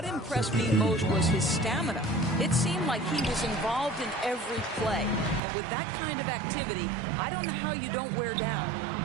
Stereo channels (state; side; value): drops out; left; at 5.4 s